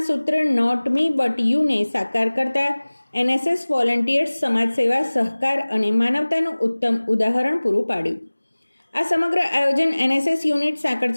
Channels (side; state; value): both; inverted; correlation -1.00